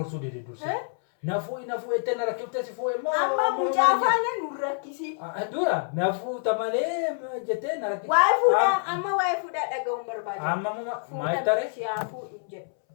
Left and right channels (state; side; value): silent; right; 60 dB below the other